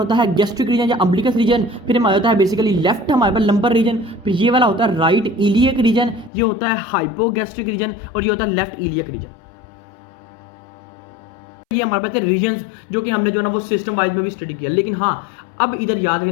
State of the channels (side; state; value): right; drops out; at 6.3 s